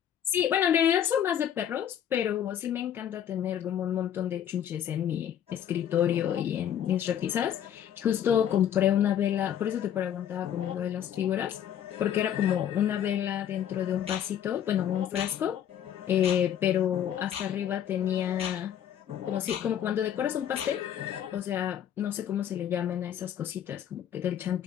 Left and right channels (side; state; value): right; quieter; 9.9 dB